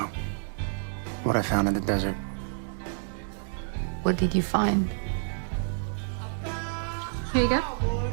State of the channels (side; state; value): left; silent; digital silence